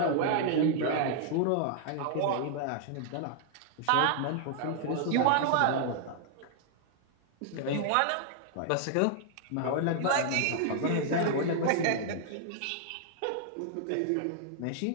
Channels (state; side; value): different; both; correlation -0.01